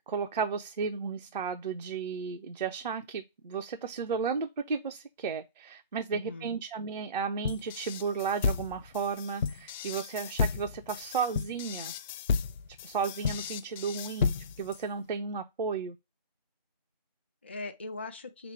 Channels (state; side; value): inverted; both; correlation -0.36